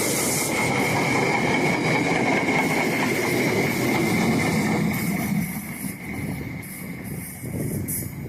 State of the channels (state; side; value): identical; both; correlation 1.00